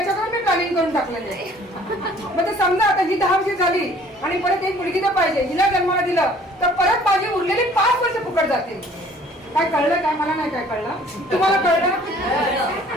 मी प्लॅनिंग करून टाकलेलं आहे. मग ते समजा आता ही 10 वर्ष झाली आणि परत एक मुलगी तर पाहिजे. हिला जन्माला दिलं तर परत माझी उरलेली 5 वर्ष फुकट जातील. काय कळलं काय मला नाही काय कळलं. तुम्हाला कळलं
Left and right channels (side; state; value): both; normal; correlation 0.54